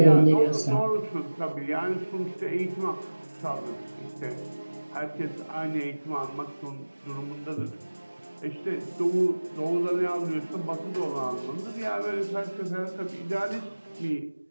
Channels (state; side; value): inverted; both; correlation -1.00